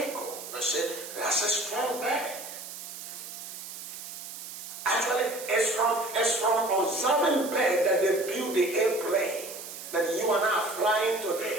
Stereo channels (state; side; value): noise; right; hiss, 11 dB below the sound